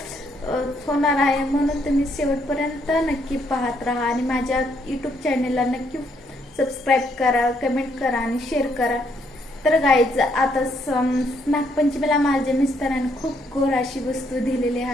होणार आहे म्हणून तुम्ही शेवटपर्यंत नक्की पाहत राहा आणि माझ्या यूट्यूब चॅनलला नक्की सबस्क्राईब करा, कमेंट करा आणि शेअर करा. तर गाईज, आता नागपंचमीला माझ्या मिस्टरांनी खूप गोड अशी वस्तू दिलेली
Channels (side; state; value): both; normal; correlation 0.72